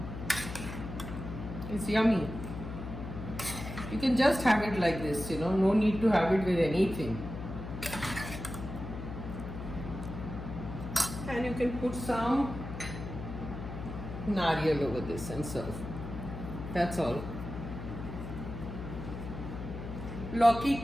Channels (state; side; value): noise; left; hum, 8 dB below the sound